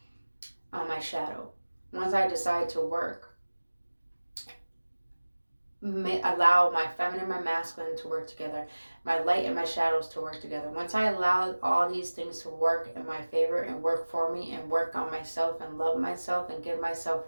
on my shadow, once I decide to work, allow my feminine and my masculine to work together, my light and my shadows to work together. Once I allow all these things to work in my favor and work for me and work on myself and love myself and give myself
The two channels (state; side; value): inverted; both; correlation -1.00